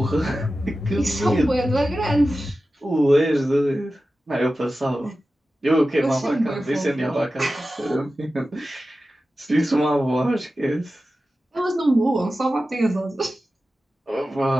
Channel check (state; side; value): normal; both; correlation 0.94